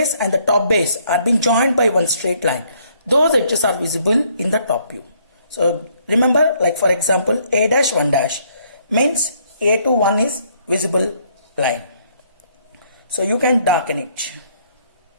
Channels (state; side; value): inverted; both; correlation -0.67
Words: and the top base are being joined by one straight line. Those edges are visible in the top view. So remember, like for example, A dash 1 dash means A to 1 is visible line. So you can darken it.